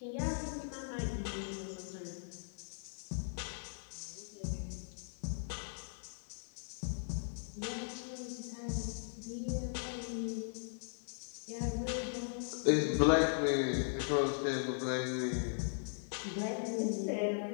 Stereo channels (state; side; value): silent; right; digital silence